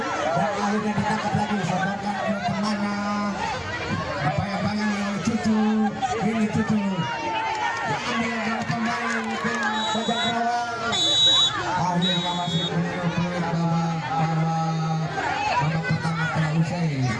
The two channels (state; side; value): identical; both; correlation 1.00